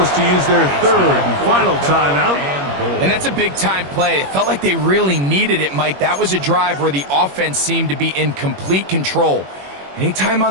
to use their third and final timeout. And that's a big-time play. It felt like they really needed it, Mike. That was a drive where the offense seemed to be in complete control. Anytime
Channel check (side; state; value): left; late; 21 ms